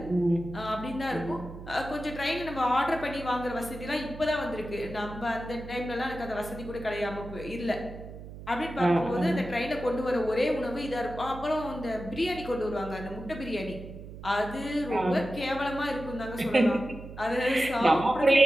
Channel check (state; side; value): noise; right; hum, 13 dB below the sound